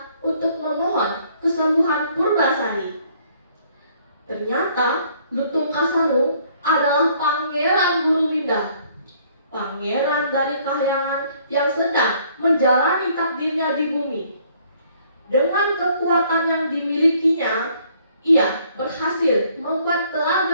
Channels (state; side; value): inverted; both; correlation -0.62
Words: untuk memohon kesembuhan Purbasari. Ternyata Lutung Kasarung adalah Pangeran Gurumida, pangeran dari kahyangan yang sedang menjalani takdirnya di bumi. Dengan kekuatan yang dimilikinya, ia berhasil membuat